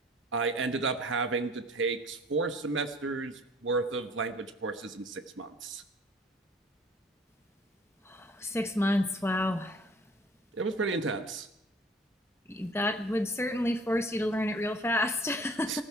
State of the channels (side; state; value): both; normal; correlation 0.51